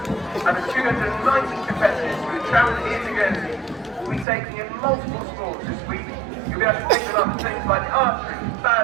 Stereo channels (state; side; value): drops out; left; at 4.2 s